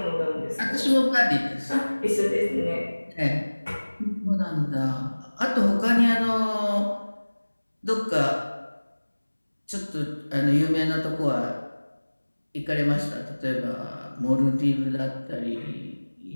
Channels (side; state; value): both; inverted; correlation -1.00